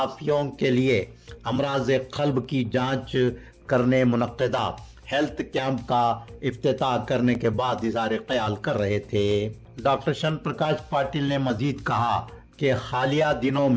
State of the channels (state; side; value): identical; both; correlation 1.00